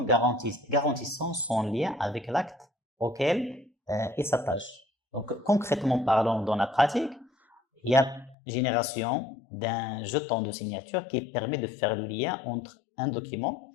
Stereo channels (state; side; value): drops out; right; at 8.3 s